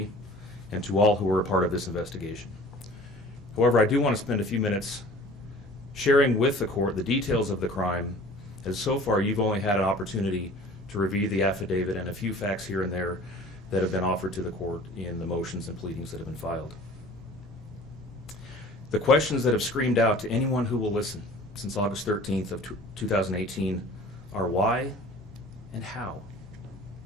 and to all who were a part of this investigation. However, I do want to spend a few minutes sharing with the court the details of the crime, as so far you've only had an opportunity to review the affidavit and a few facts here and there that have been offered to the court in the motions and pleadings that have been filed. The questions that have screamed out to anyone who will listen since August 13th of 2018 are why and how.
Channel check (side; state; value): both; normal; correlation 0.46